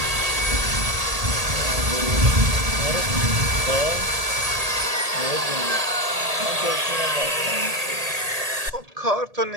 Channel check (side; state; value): left; late; 1.8 ms